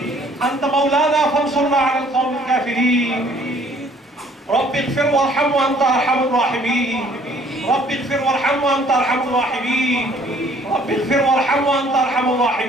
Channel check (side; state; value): both; normal; correlation 0.59